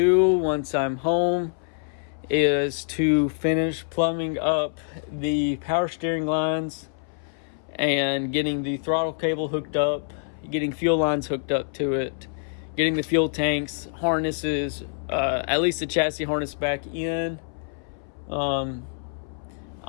once I'm home is to finish plumbing up the power steering lines and getting the throttle cable hooked up, getting fuel lines hooked up to it, getting the fuel tanks, harnesses, at least the chassis harness back in. I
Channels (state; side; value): silent; right; 61 dB below the other